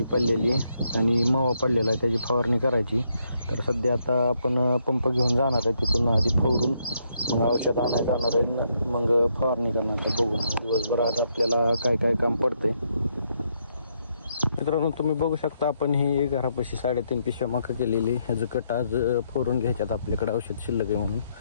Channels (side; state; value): both; inverted; correlation -0.76